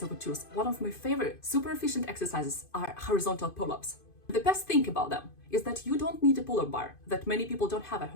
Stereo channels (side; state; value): right; late; 2.5 ms